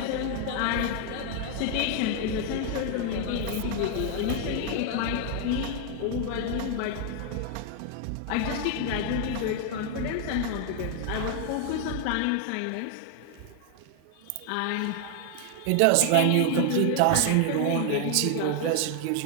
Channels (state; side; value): different; both; correlation 0.00